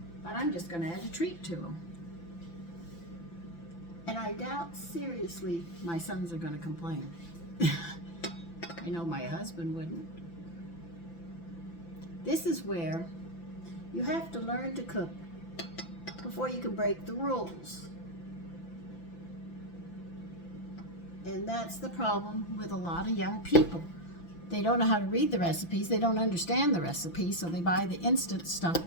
But I'm just going to add a treat to them. And I doubt seriously my sons are going to complain. I know my husband wouldn't. This is where you have to learn to cook before you can break the rules. And that's the problem with a lot of young people. They don't know how to read the recipes. They don't understand the recipes, so they buy the instant stuff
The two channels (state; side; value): late; right; 5.9 ms